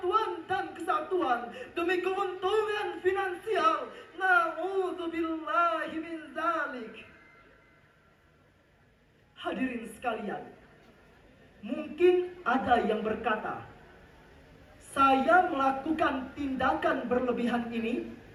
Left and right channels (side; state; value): both; identical; correlation 1.00